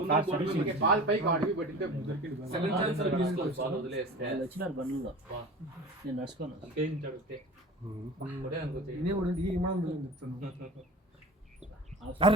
బాల్ పైకి అడిగి పట్టితే సెకండ్ ఛాన్స్ తీసుకోవచ్చు బాల్ వదిలేస్తే వచ్చినారు బండ్లో నేను నడుచుకోను. ఇనే కూడా ఈ మనం చెప్తాను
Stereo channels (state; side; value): normal; both; correlation 0.37